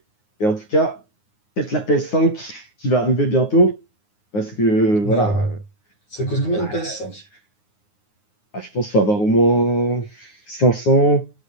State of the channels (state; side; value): late; right; 9.6 ms